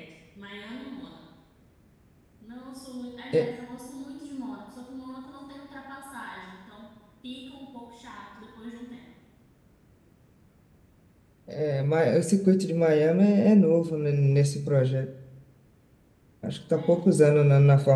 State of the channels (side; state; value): both; identical; correlation 1.00